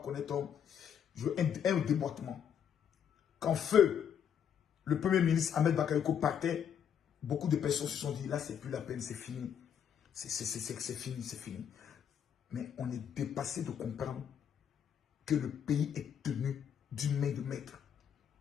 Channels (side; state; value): right; quieter; 8.4 dB